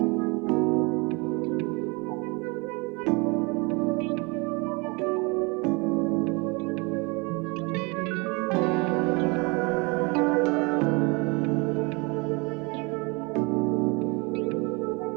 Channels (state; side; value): quieter; left; 28.5 dB